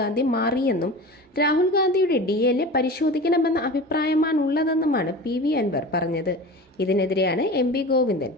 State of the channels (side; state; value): both; normal; correlation 0.34